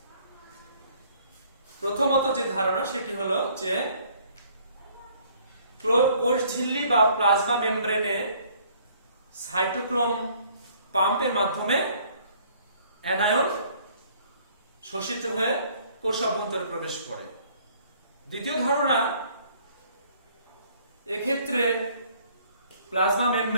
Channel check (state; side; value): inverted; both; correlation -0.59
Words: প্রথমত যে ধারণা সেটি হলো যে কোষ ঝিল্লি বা প্লাজমা মেমব্রেনে সাইটোক্রোম পাম্পের মাধ্যমে অ্যানায়ন শোষিত হয়ে কোষ অভ্যন্তরে প্রবেশ করে। দ্বিতীয় ধারণা, এক্ষেত্রে প্লাজমা